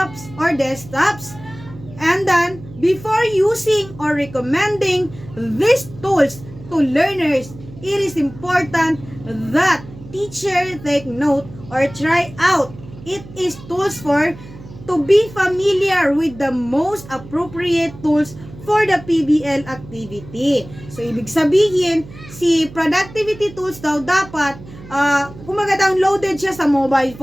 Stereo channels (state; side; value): noise; right; hum, 17 dB below the sound